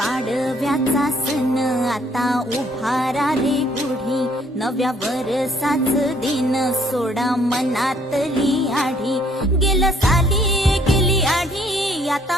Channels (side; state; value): both; normal; correlation 0.64